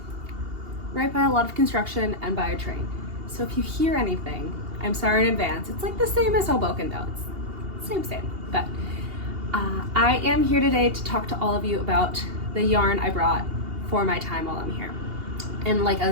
right by a lot of construction and by a train. So if you hear anything, I'm sorry in advance. It's like the same as Hoboken though. It's same. But I am here today to talk to all of you about the yarn I brought for my time while I'm here. And like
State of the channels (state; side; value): late; left; 2.8 ms